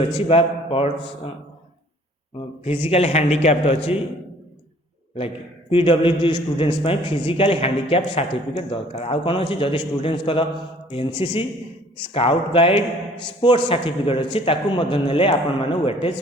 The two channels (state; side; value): normal; both; correlation 0.55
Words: फिजिकल हैंडिकैप्ड अच्छी like PWD students physical handicapped certificate दरकार आउ कौन अच्छी जदि students NCC scout guide sports certificate अच्छी ने आपण मैंने वेटेज